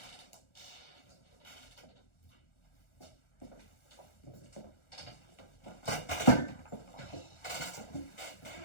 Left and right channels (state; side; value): late; right; 1.4 ms